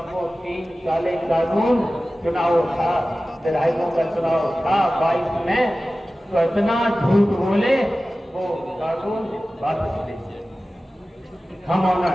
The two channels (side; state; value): both; normal; correlation 0.96